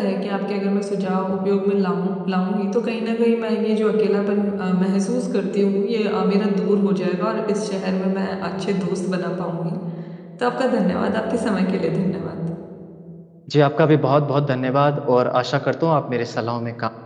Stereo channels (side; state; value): both; identical; correlation 1.00